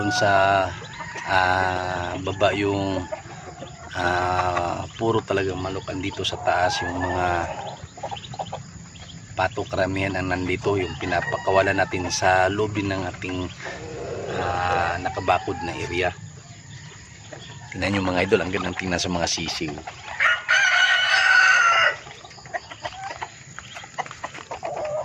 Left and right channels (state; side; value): identical; both; correlation 1.00